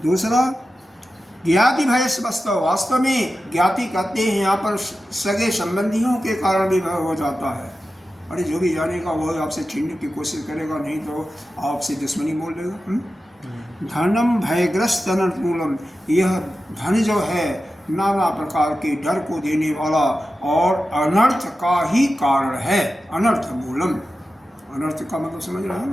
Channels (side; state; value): both; normal; correlation 0.93